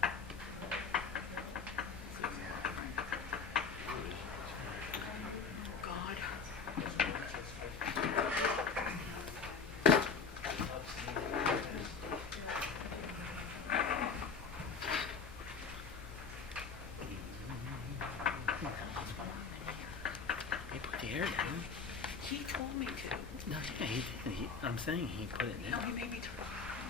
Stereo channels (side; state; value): right; quieter; 5.4 dB